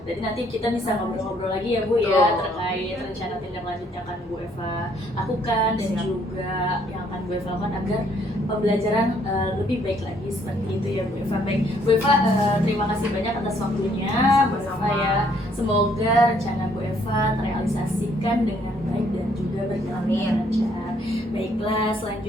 Jadi nanti kita bisa ngobrol-ngobrol lagi ya Bu ya terkait rencana tindak lanjut yang akan Bu Eva lakukan dan Siap. juga yang akan Bu Eva lakukan agar pembelajaran lebih baik lagi seperti itu ya Bu Eva. Baik Bu Eva, terima kasih banyak atas waktunya Bu Eva ya. Semoga rencana Bu Eva terrealisasikan dengan baik dan juga berjalan dengan lancar. Baiklah,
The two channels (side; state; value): both; normal; correlation 0.66